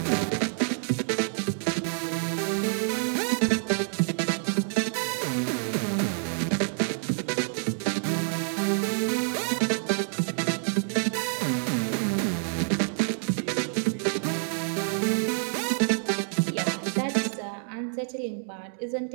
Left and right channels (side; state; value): left; silent; 60 dB below the other